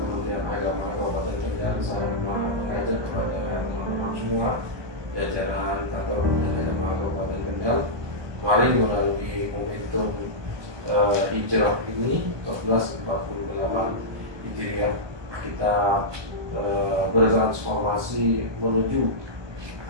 Agama Kabupaten Kendal saya mengajak kepada teman-teman semua jajaran kantor Kementerian Agama Kabupaten Kendal, mari melalui momentum hijrah ini 1448 Hijriah kita bertransformasi menuju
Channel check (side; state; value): left; late; 1.2 ms